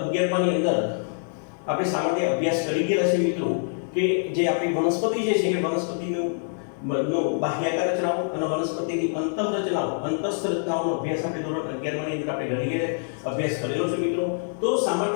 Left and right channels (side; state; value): right; silent; digital silence